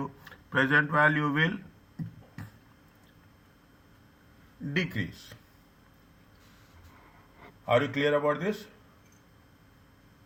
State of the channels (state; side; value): identical; both; correlation 1.00